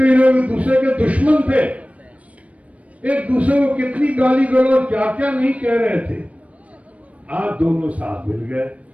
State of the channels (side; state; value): left; late; 0.066 ms